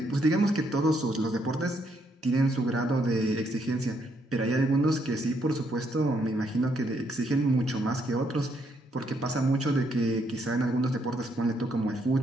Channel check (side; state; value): both; normal; correlation 0.74